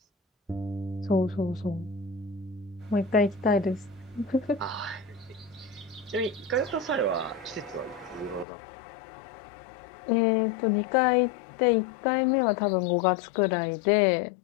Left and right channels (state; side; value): drops out; right; at 8.5 s